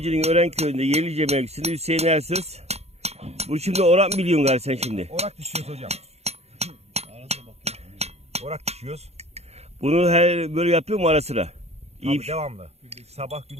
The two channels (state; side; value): late; left; 0.31 ms